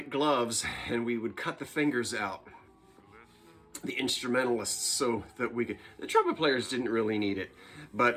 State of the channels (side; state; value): both; identical; correlation 1.00